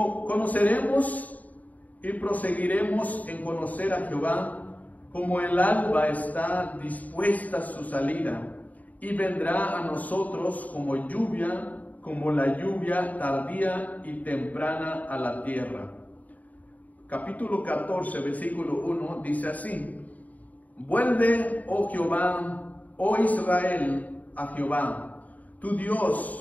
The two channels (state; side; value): late; right; 0.074 ms